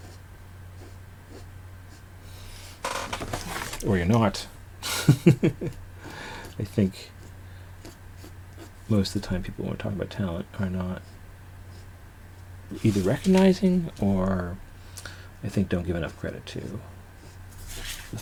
Or you're not. I think most of the time people, when we're talking about talent, are not either recognizing or I think don't give enough credit to the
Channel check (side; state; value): both; identical; correlation 1.00